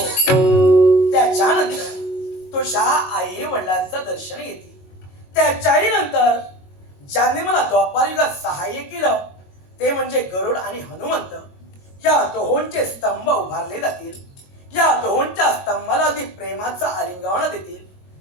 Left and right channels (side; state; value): right; late; 22 ms